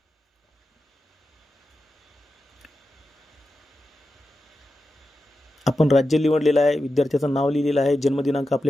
आपण राज्य निवडलेलं आहे, विद्यार्थ्याचं नाव लिहिलेलं आहे, जन्मदिनांक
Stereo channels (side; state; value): both; normal; correlation 0.90